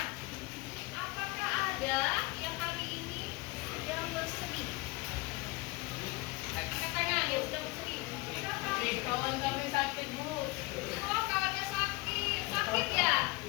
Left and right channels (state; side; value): quieter; right; 23.4 dB